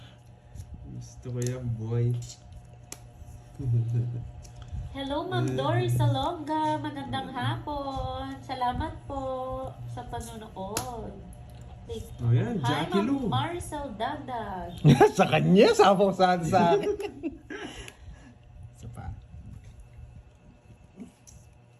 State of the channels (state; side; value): identical; both; correlation 1.00